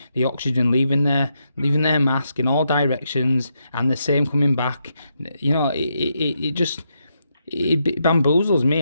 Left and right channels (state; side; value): inverted; both; correlation -0.81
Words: the oxygen leaving their mask in all directions, and the same coming back. You know, it bamboozles me